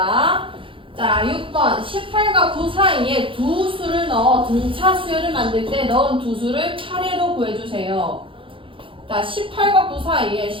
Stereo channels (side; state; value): left; late; 0.25 ms